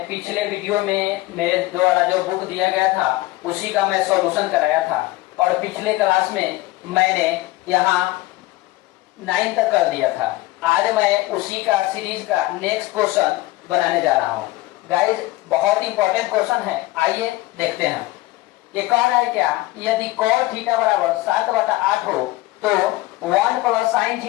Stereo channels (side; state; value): right; quieter; 18.7 dB